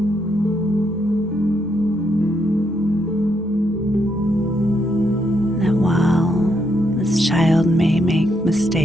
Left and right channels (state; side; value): normal; both; correlation 0.77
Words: That while this child may make